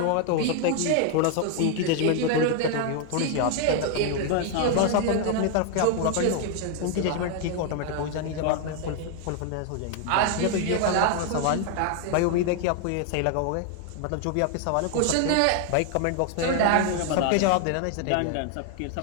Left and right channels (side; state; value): both; different; correlation 0.00